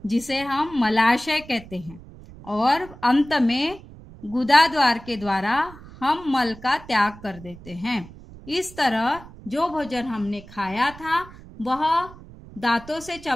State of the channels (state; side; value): noise; right; rumble, 18 dB below the sound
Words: जिसे हम मलाशय कहते हैं। और अंत में गुदा द्वार के द्वारा हम मल का त्याग कर देते हैं। इस तरह जो भोजन हमने खाया था वह दांतों से